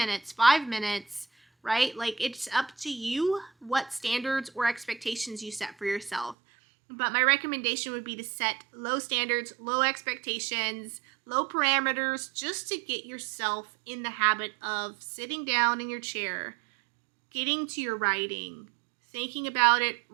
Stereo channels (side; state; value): left; drops out; at 6.4 s